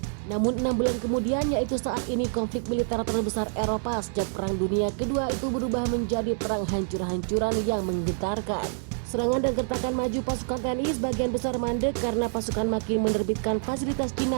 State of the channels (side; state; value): left; silent; 57 dB below the other